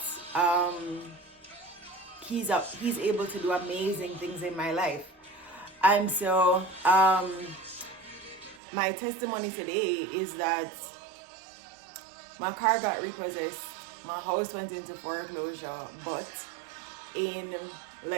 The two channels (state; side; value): drops out; left; at 8.6 s